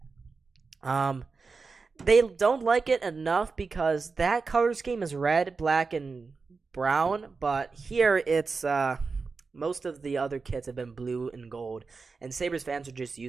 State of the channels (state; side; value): quieter; left; 4.5 dB